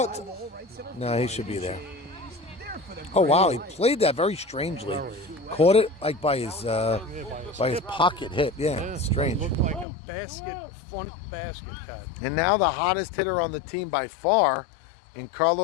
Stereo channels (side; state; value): right; drops out; at 9.9 s